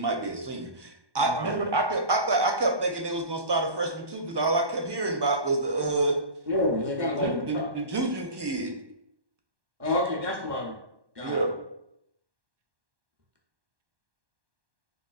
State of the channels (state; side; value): late; left; 1.1 ms